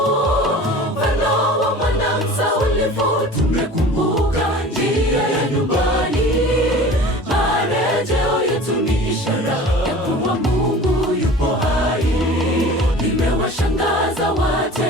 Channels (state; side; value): normal; both; correlation 0.40